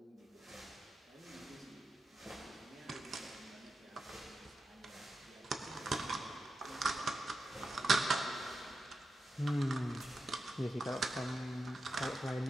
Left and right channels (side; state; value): both; normal; correlation 0.89